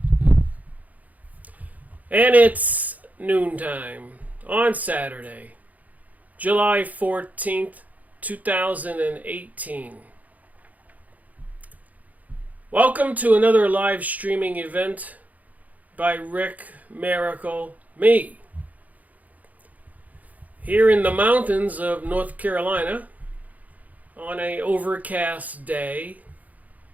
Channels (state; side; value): late; left; 0.077 ms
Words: And it's noontime on Saturday, July 14th, 2018. Welcome to another live streaming event by Rick Miracle, me. Here in the mountains of North Carolina on an overcast day.